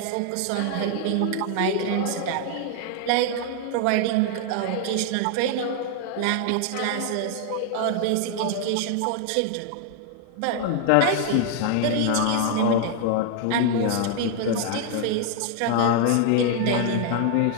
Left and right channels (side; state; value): both; different; correlation 0.00